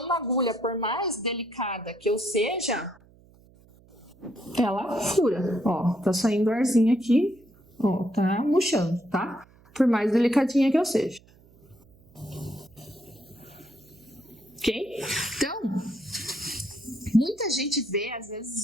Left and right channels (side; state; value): right; noise; hum, 27 dB below the sound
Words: uma agulha, por mais delicada que eu seja, ela fura. Ó, tá saindo arzinho aqui, ó, tá murchando, tá? Por mais delicadinha que eu seja. Ok? Então, muita gente vê, às